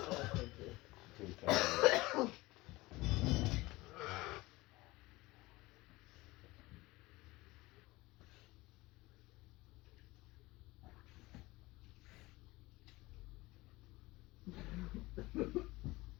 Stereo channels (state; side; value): quieter; right; 20.7 dB